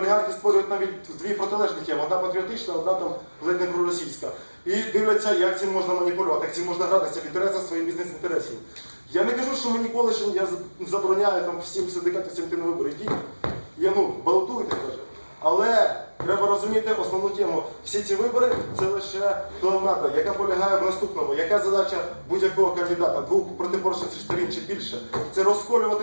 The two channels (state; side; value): inverted; both; correlation -1.00